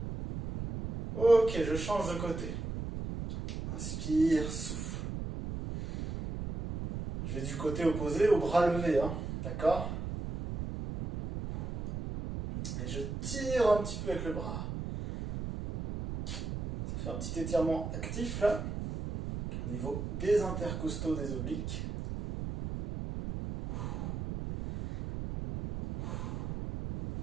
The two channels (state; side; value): noise; right; rumble, 5 dB below the sound